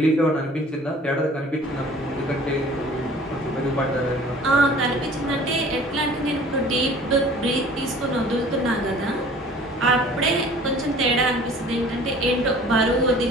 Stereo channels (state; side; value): normal; both; correlation 0.49